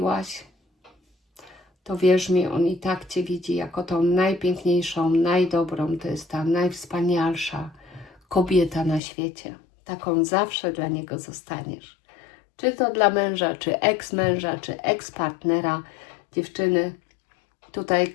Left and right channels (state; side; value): drops out; right; at 9.0 s